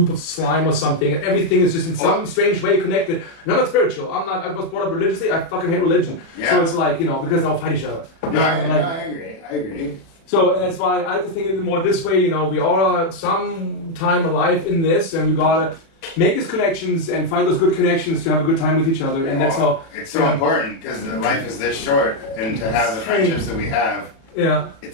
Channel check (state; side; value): late; right; 36 ms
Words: of slime or something, and everything is just in some strange way connected. And I'm not spiritual. I was brought up religiously. I fucking hate religion. Yeah. So it's like, you know, because they'll fight each other. No, I Like- agree. So and that's why I like to think of it more this way. You know, we all are some time alive in this, and we gotta make these connections and find those good connections to have a good time with each other. And that's how. It's so important because life is this short, and to have the friendships that we have, Yeah.